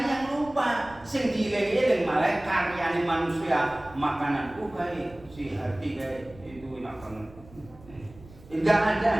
yang lupa sing dieling-eling malah karyane manusia makanan kae si hati kae itu enak banget. Enggak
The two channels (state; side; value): noise; right; rumble, 22 dB below the sound